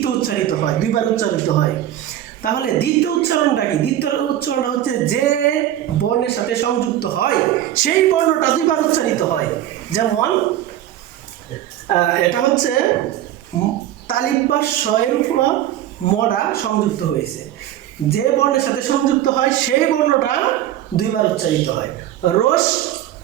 উচ্চারিত হয়, দুইবার উচ্চারিত হয়। তাহলে দ্বিতীয় উচ্চারণটা কি? দ্বিতীয় উচ্চারণটা হচ্ছে যে বর্ণের সাথে সংযুক্ত হয় সেই বর্ণটা দুইবার উচ্চারিত হয়। যেমন এটা হচ্ছে তালিব বা শয়ের উপর মরা সংযুক্ত হয়েছে, যে বর্ণের সাথে সংযুক্ত হয় সেই বর্ণটা দুইবার উচ্চারিত হয়, রস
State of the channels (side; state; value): left; quieter; 12.4 dB